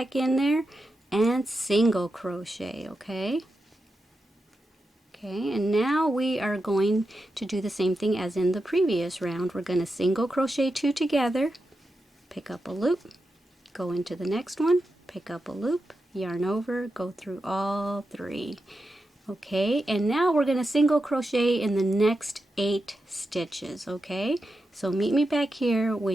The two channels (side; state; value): both; normal; correlation 0.89